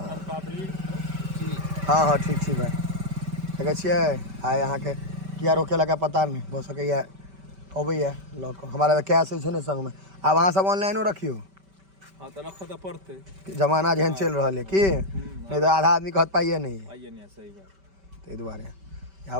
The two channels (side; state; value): left; late; 5.2 ms